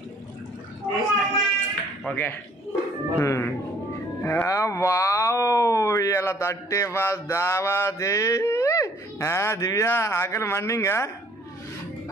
ఓకే. వావ్, ఇలా 31st దావాది. దివ్య ఆకలి మండింగా?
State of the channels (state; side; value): normal; both; correlation 0.59